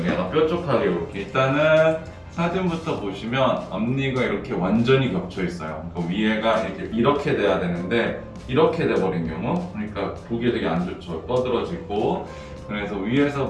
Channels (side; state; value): both; identical; correlation 1.00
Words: 약간 뾰족하게 이렇게. 일단은 사진부터 보시면 앞니가 이렇게 완전히 겹쳐 있어요. 그러니까 위에가 이렇게 돼야 되는데 이렇게 돼버린 경우, 그러니까 보기에 되게 안 좋죠. 떠들어지고. 그래서 위에서